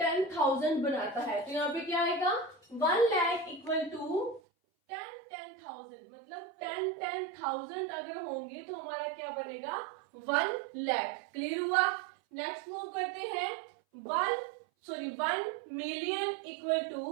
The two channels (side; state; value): left; drops out; at 4.4 s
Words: बनाता है? तो यहाँ पे क्या आएगा 1 लाख इक्वल टू 10,000, मतलब 10,000 अगर होंगे तो हमारा क्या बनेगा 1 लाख। क्लियर हुआ? नेक्स्ट मूव करते हैं 1 मिलियन इक्वल